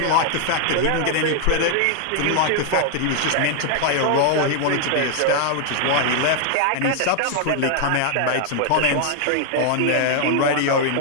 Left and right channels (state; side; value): different; both; correlation 0.00